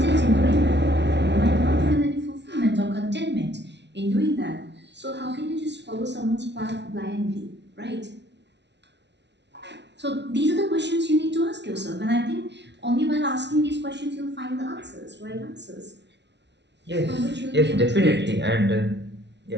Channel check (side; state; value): left; late; 0.50 ms